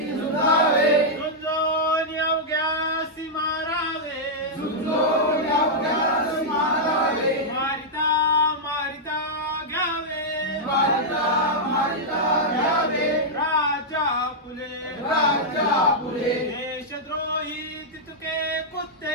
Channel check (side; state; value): both; normal; correlation -0.07